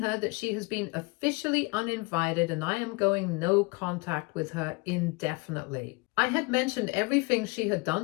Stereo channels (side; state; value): right; quieter; 28.2 dB